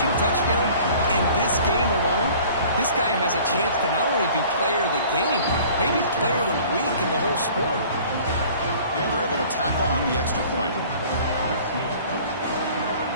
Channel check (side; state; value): both; inverted; correlation -0.49